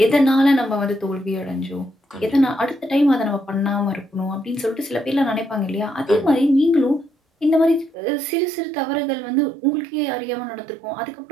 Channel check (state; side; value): drops out; left; at 8.0 s